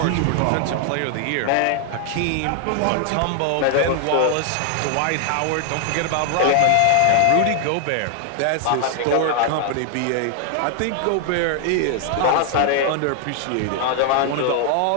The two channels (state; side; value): different; both; correlation 0.00